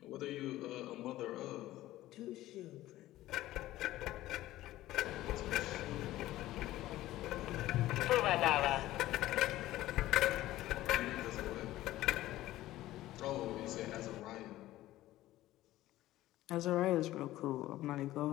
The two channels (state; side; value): quieter; right; 15.5 dB